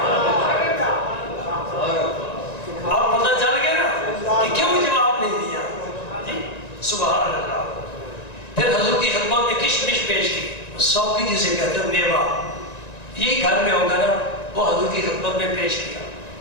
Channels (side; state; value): right; late; 1.9 ms